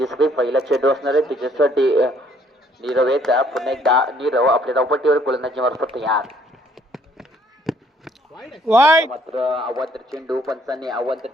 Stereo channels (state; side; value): normal; both; correlation 0.64